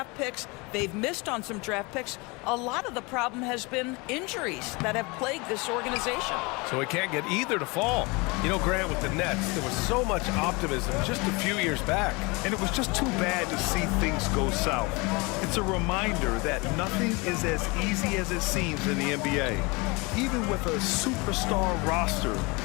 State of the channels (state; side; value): quieter; right; 26.7 dB